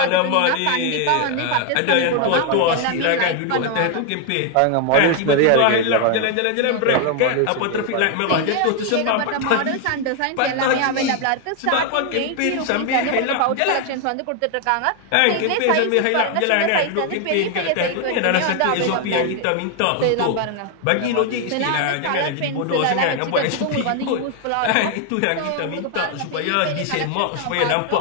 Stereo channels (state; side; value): different; both; correlation 0.01